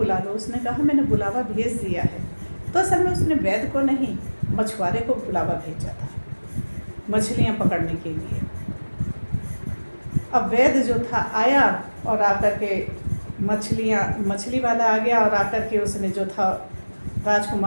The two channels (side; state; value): both; inverted; correlation -1.00